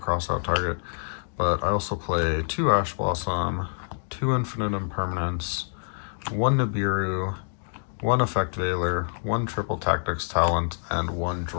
target, but I also play 2 Ash Blossom, 2 Infinite Impermanence, 1 Nibiru, 1 Effect Veiler, 1 Triple Tactics Talent, and 1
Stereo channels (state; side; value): silent; right; digital silence